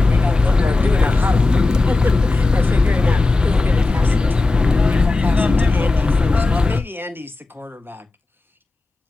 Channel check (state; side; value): quieter; right; 3.3 dB